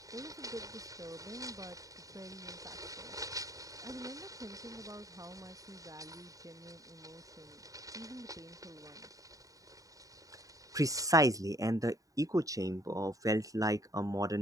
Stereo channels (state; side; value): late; left; 0.16 ms